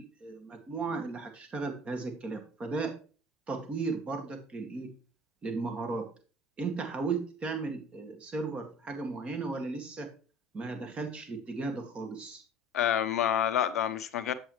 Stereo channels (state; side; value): normal; both; correlation 0.43